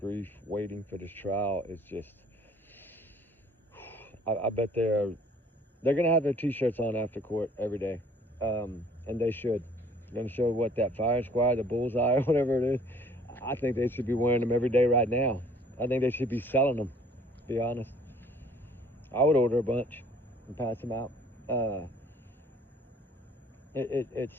waiting for this trial is just, I bet they're going to have their t-shirts on after court every day. And they should. They're going to show what that fire squad, the bullseye, or whatever it is. I think they should be wearing them every day right now. I think they should be selling them, to be honest. I would order a bunch and pass them out.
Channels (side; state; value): both; normal; correlation 0.56